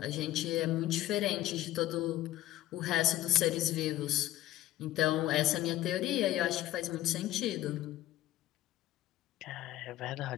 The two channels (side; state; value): right; quieter; 14.4 dB